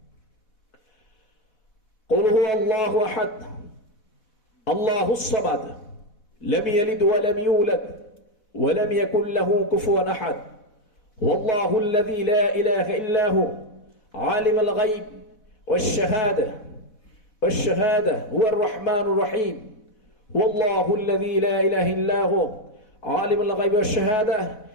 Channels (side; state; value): right; late; 4.1 ms